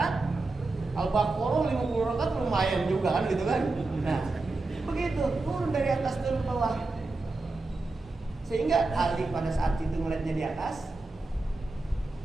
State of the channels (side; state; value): left; quieter; 3.3 dB